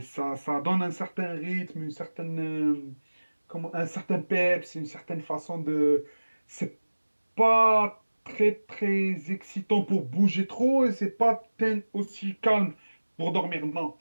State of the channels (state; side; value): inverted; both; correlation -1.00